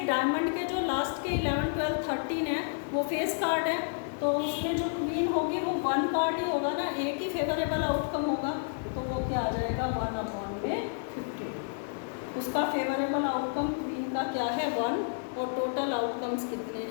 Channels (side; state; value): right; silent; digital silence